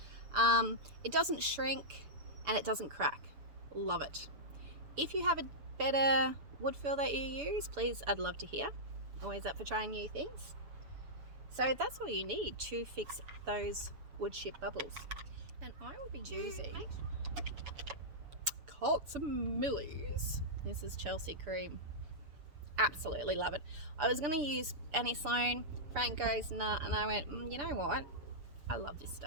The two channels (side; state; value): left; late; 6.9 ms